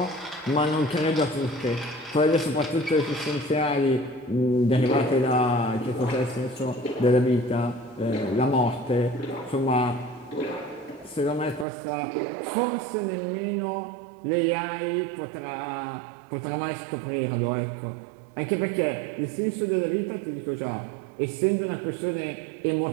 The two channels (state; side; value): drops out; left; at 11.7 s